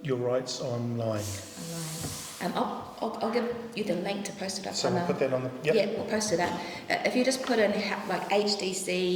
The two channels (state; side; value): identical; both; correlation 1.00